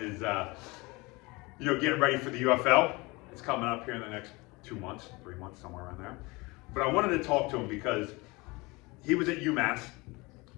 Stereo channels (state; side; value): quieter; right; 24.5 dB